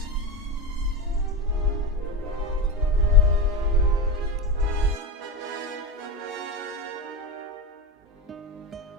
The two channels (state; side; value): normal; both; correlation 0.19